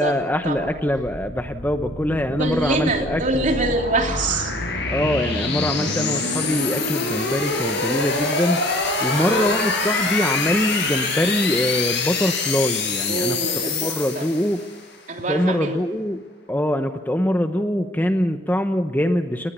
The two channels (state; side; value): normal; both; correlation 0.57